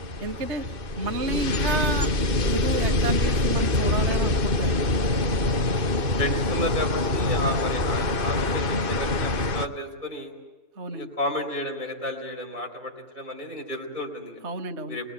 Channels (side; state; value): left; late; 2.6 ms